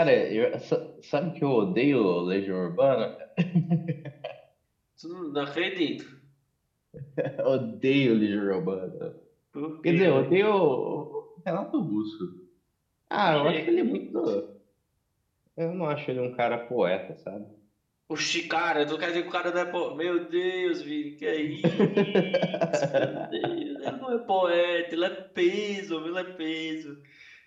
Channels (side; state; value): both; identical; correlation 1.00